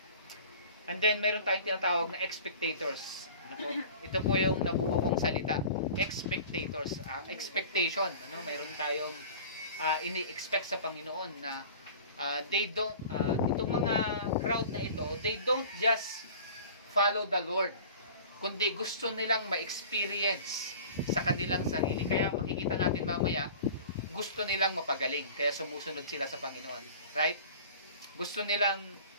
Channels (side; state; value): both; inverted; correlation -0.41